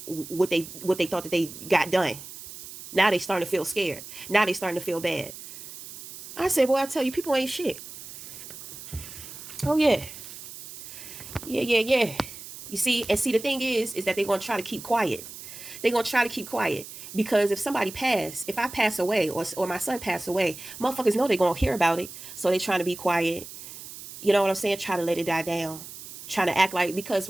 what they thought that they got done. Now they starting to feel scared. Now they starting to feel bad. I said, boy, I tell you, people ain't shit. Oh, yeah. Yeah. You see, the thing is that they're going to try to keep quiet. They're going to try to keep quiet because if somebody if I pass away or my son pass away, motherfuckers know they're going to hear about it. So they're trying to be quiet. You know what I'm saying? Try to let it die down. Trying to act like, because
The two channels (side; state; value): right; noise; hiss, 13 dB below the sound